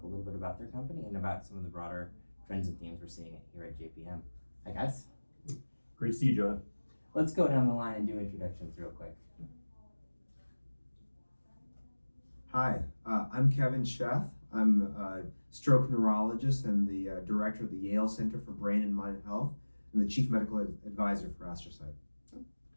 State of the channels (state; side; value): inverted; both; correlation -1.00